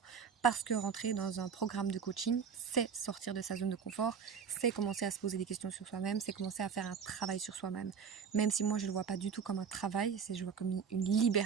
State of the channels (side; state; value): left; quieter; 6.7 dB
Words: Parce que rentrer dans un programme de coaching, c'est sortir de sa zone de confort, c'est commencer à se poser des questions sur soi-même, c'est commencer à faire un travail sur soi-même. Même si moi je ne le vois pas du tout comme un travail, je le vois comme une